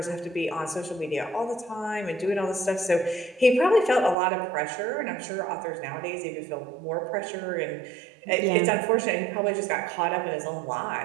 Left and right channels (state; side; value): drops out; left; at 4.2 s